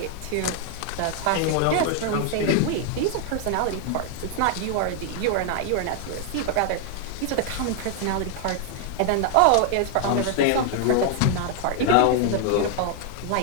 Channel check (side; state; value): both; different; correlation 0.00